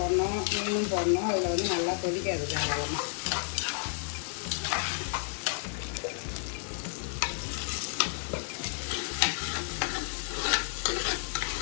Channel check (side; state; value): right; silent; 57 dB below the other